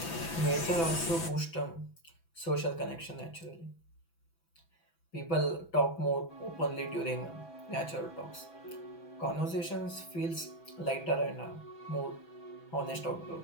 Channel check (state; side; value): late; right; 6.0 ms